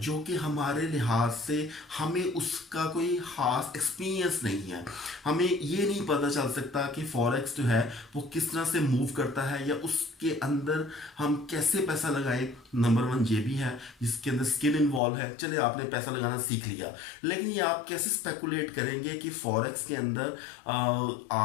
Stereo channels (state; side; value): drops out; right; at 15.0 s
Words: कि हमारे लिहाज से हमें उसका कोई ख़ास एक्सपीरियंस नहीं है। हमें ये नहीं पता चल सकता कि फॉरेक्स जो है वो किस तरह से मूव करता है या उसके अंदर हम कैसे पैसा लगाएं। नंबर वन ये भी है जिसके अंदर स्किल इन्वॉल्व है। चले आपने पैसा लगाना सीख लिया, लेकिन ये आप कैसे स्पेकुलेट करेंगे कि फॉरेक्स के अंदर